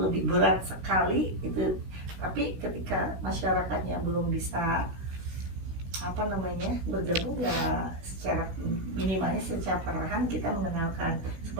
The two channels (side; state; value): left; late; 17 ms